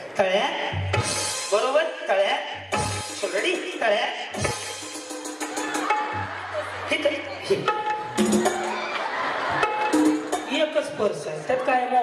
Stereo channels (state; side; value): identical; both; correlation 1.00